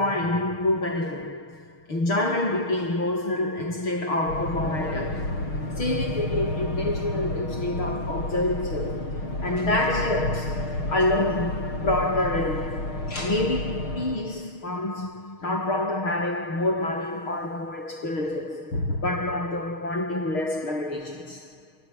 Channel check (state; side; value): late; right; 6.4 ms